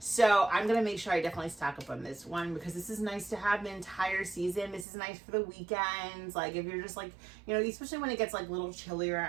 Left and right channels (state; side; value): drops out; left; at 4.9 s